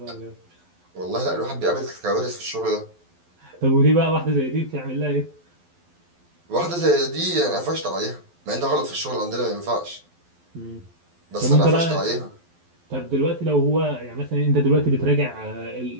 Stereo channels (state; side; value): late; left; 12 ms